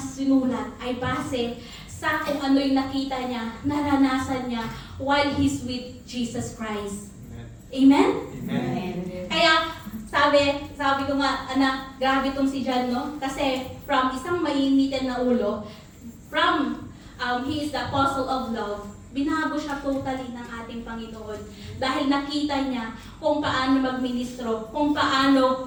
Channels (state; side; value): identical; both; correlation 1.00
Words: ay base sa kung ano yung nakita niya, naranasan niya while he's with Jesus Christ. Amen? Amen. Kaya, sabi ko nga, anak, grabe itong si John, no? Kasi from isang mainitin na ulo, from he is the apostle of love, binago siya totally ng ating Panginoon. Dahil nakita niya kung paano magministro, kung paano